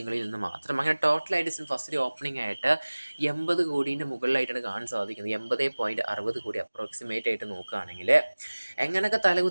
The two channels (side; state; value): both; inverted; correlation -1.00